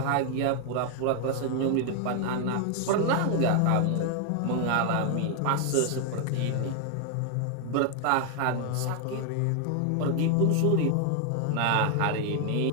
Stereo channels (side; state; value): both; different; correlation 0.00